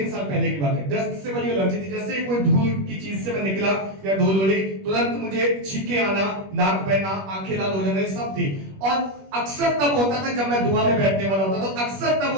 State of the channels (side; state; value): left; late; 21 ms